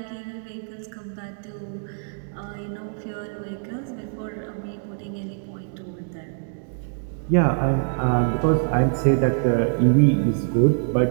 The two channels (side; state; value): left; silent; 62 dB below the other